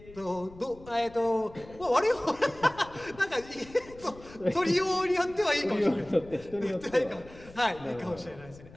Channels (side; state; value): left; noise; rumble, 20 dB below the sound